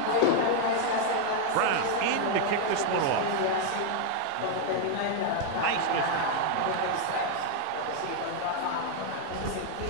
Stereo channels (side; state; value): both; different; correlation 0.00